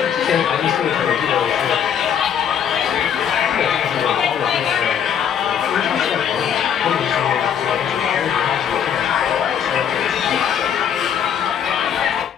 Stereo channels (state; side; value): quieter; right; 8.5 dB